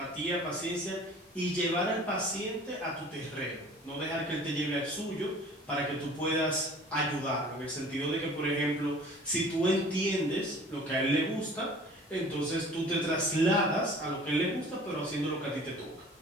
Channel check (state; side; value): normal; both; correlation 0.47